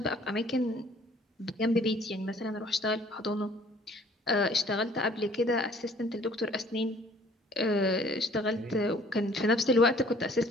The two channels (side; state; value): both; normal; correlation 0.56